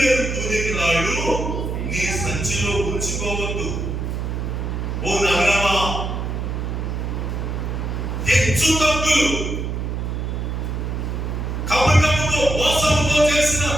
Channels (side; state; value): right; noise; hum, 3 dB below the sound